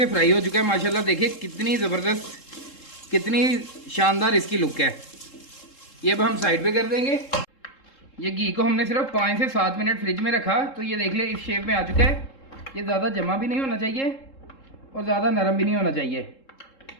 फ्राई हो चुका है माशाल्लाह। देखिए कितनी ज़बरदस्त, कितनी शानदार इसकी लुक है। ये अब हम साइड पे कर देंगे। ये घी को हमने सिर्फ 5 से 7 मिनट फ्रिज में रखा, तो ये देख ले इस शेप में आ चुका है। ये ज़्यादा जमा भी नहीं होना चाहिए और ज़्यादा नरम भी नहीं होना चाहिए।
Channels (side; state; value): right; late; 3.7 ms